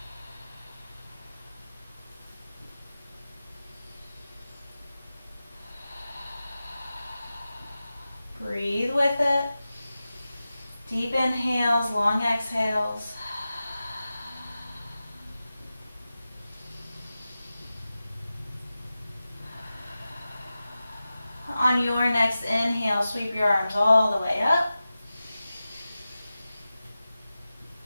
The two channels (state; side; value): inverted; both; correlation -0.94